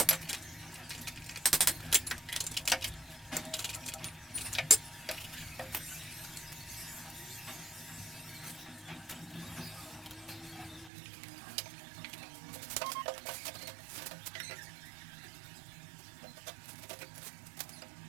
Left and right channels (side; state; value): left; drops out; at 10.9 s